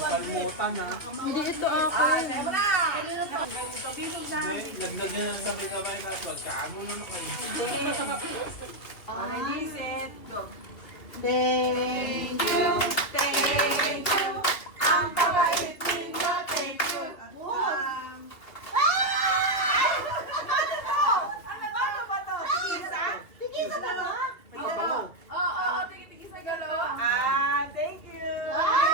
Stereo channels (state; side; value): late; right; 2.8 ms